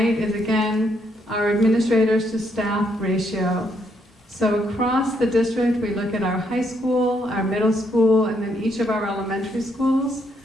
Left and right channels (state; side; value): normal; both; correlation 0.74